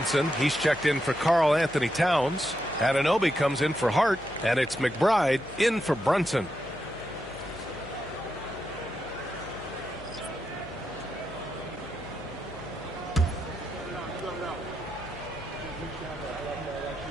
he's checked in for Karl Anthony Towns. Anunoby comes in for Hart, and it's McBride in for Brunson.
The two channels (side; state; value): left; noise; hum, 20 dB below the sound